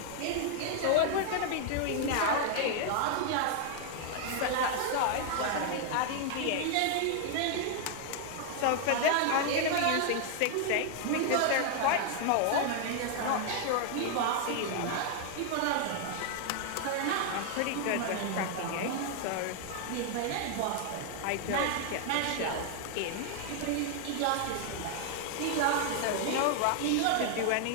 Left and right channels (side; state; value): both; different; correlation 0.00